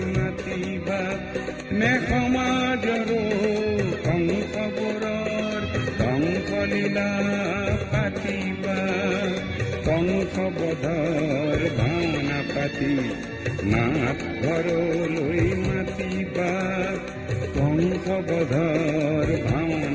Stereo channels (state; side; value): identical; both; correlation 1.00